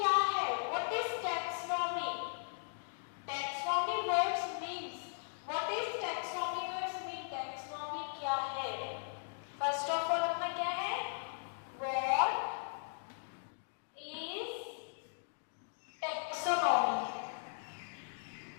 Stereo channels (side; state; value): right; silent; digital silence